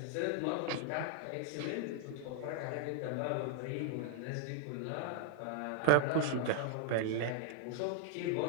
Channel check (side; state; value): both; different; correlation 0.00